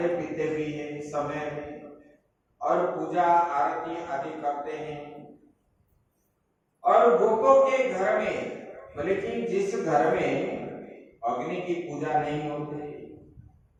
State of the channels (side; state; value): both; identical; correlation 1.00